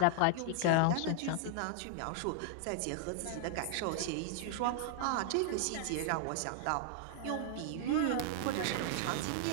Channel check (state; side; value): different; both; correlation 0.00